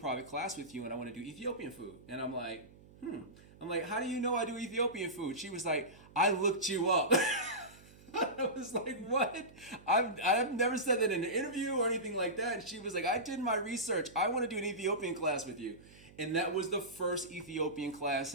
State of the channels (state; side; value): noise; right; hum, 23 dB below the sound